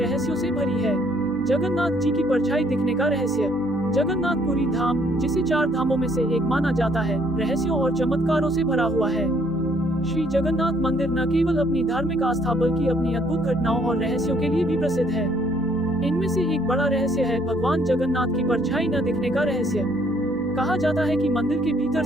से भरी है। जगन्नाथ जी की परछाई दिखने का रहस्य। जगन्नाथपुरी धाम, जिसे 4 धामों में से एक माना जाता है, रहस्यों और चमत्कारों से भरा हुआ है। श्री जगन्नाथ मंदिर न केवल अपनी धार्मिक आस्था बल्कि अपनी अद्भुत घटनाओं और रहस्यों के लिए भी प्रसिद्ध है। इनमें से एक बड़ा रहस्य है भगवान जगन्नाथ की परछाई न दिखने का रहस्य। कहा जाता है कि मंदिर के भीतर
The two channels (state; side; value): noise; right; hum, 21 dB below the sound